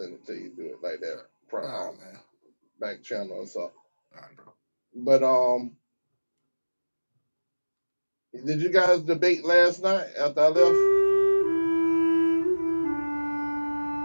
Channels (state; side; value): inverted; both; correlation -1.00